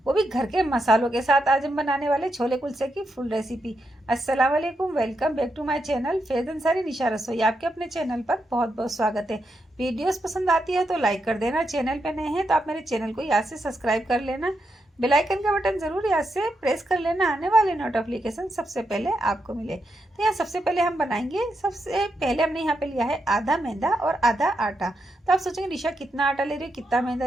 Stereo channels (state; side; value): normal; both; correlation 0.83